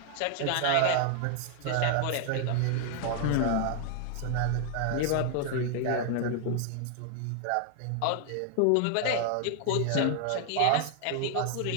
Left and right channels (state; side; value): different; both; correlation 0.00